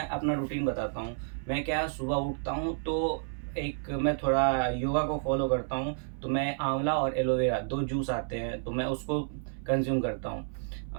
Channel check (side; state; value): left; silent; 57 dB below the other